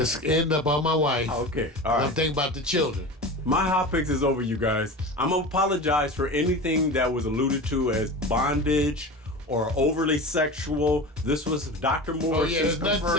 end up on my wife. Okay, all I'm right. thinking about the children. My hot picks is over, you guys. I'm going to apologize for anything that was alluded to as bondage or overly sexual. This was Dr. Oh Morris yeah, there's nothing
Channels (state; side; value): normal; both; correlation 0.31